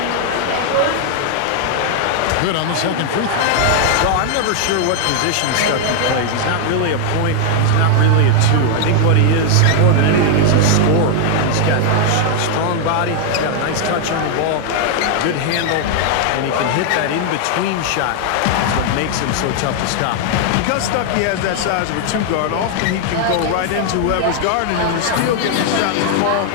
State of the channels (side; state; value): both; different; correlation 0.00